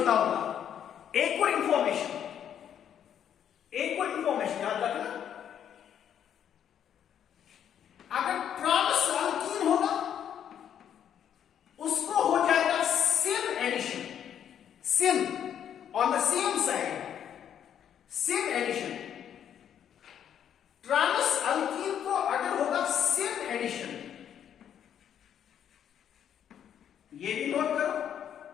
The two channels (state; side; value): quieter; right; 9.3 dB